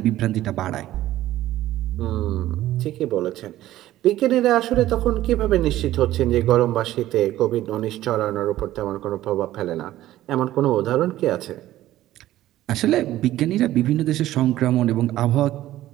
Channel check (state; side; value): quieter; left; 14.5 dB